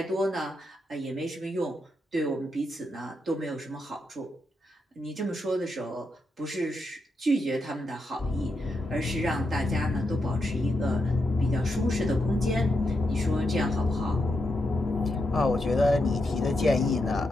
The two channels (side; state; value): both; normal; correlation 0.84